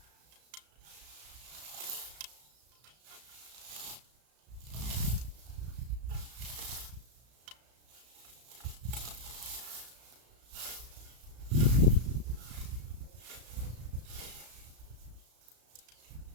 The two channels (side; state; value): left; late; 34 ms